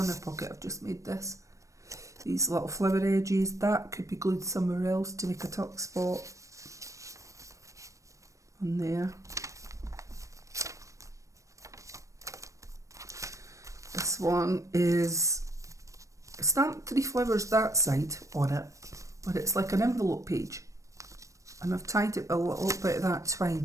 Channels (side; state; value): left; late; 0.15 ms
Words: pocket. I've just made this. These little flower edges, that could be glued somewhere else to make a tuck spot on there. This one is stamped 3 flowers that side on it, but it's like an envelope page, and I've tied it with a little bit of that